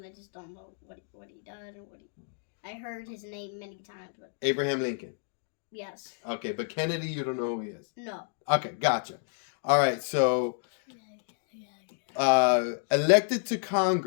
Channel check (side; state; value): right; silent; digital silence